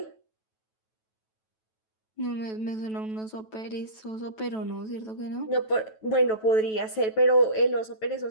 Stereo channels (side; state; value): right; late; 9.2 ms